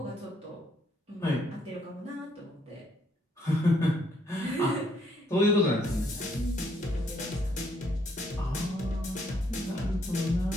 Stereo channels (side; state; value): both; normal; correlation 0.70